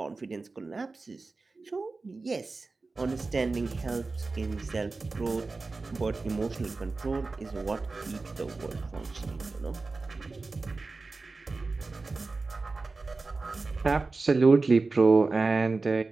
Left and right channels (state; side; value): quieter; left; 3.7 dB